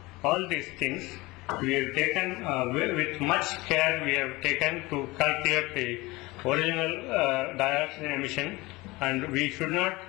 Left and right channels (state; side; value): quieter; right; 22.0 dB